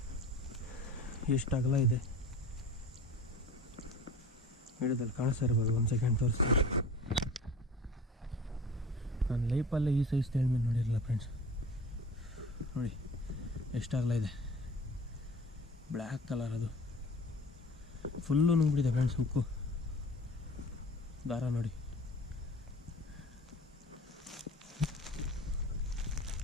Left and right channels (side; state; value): both; normal; correlation 0.41